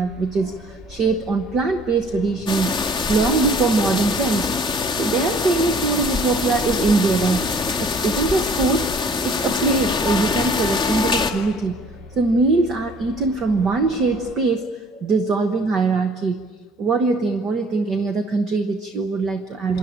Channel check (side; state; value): both; normal; correlation 0.54